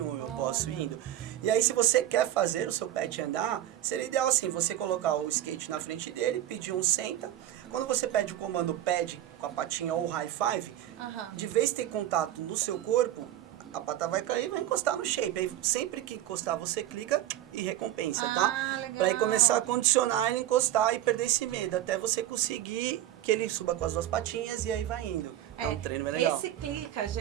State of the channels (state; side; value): quieter; left; 12.8 dB